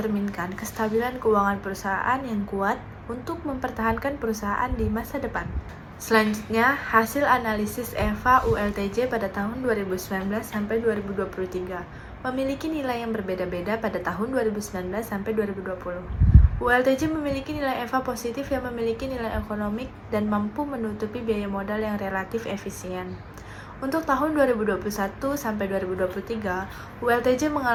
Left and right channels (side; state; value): both; identical; correlation 1.00